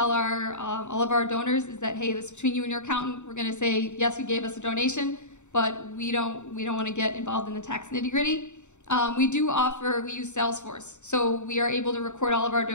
all of our donors is that, hey, this is between you and your accountant. We're going to say, yes, you gave us a donation, but we don't want to get involved in the tax nitty-gritty. We use Salesforce. So we are able to record all of our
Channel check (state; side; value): late; right; 0.84 ms